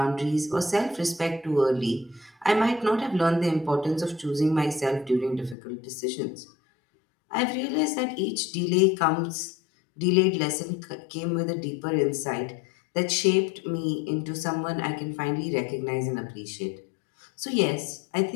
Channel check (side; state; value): right; drops out; at 5.6 s